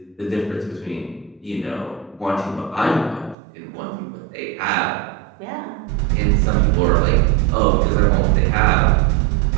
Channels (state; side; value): drops out; left; at 3.4 s